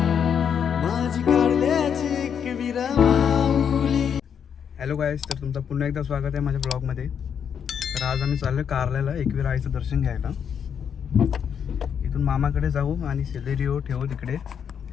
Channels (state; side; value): quieter; right; 7.7 dB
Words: माझी काढल्याची एक विरमावली. हॅलो गाईस, तर तुमचं पुन्हा एकदा स्वागत आहे माझ्या ब्लॉगमध्ये. तर आज आम्ही चाललो कारल्याला एकवीर आईचं दर्शन घ्यायला. इथून मामाकडे जाऊ आणि सेलेरिओ ठेवू तिकडे